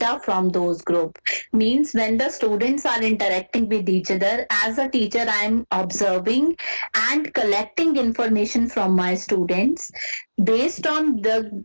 from those groups. Means when the students are interacting with each other, as a teacher, I am observing and collecting information from my students. Based on the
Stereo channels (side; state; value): both; inverted; correlation -1.00